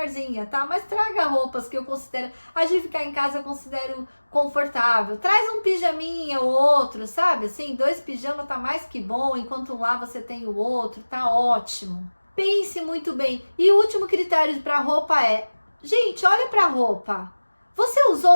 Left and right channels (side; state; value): both; inverted; correlation -1.00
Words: tá? Mas traga roupas que eu considero, a de ficar em casa eu considero confortável. Traz um pijaminha ou outro, sabe? Assim, 2 pijamas tá mais que bom, enquanto um lá você tem o outro, tá ótimo. Pense muito bem. E o último critério para roupa é, gente, olha pra roupa. Você